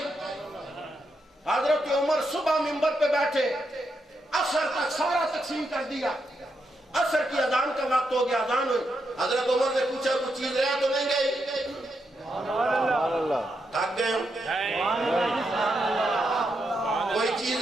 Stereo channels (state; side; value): normal; both; correlation 0.82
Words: حضرت عمر صبح منبر پہ بیٹھے عصر تک سارا تقسیم کر دیا عصر کی اذان کا وقت ہو گیا اذان ہوئی حضرت عمر نے پوچھا کوئی چیز رہ تو نہیں گئی تھک گئے کوئی